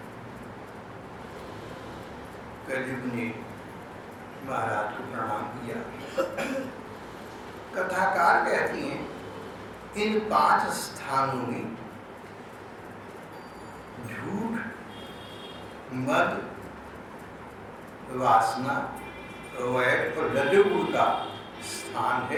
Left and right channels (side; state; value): both; identical; correlation 1.00